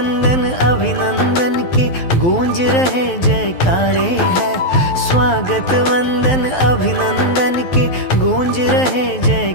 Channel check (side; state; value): right; late; 12 ms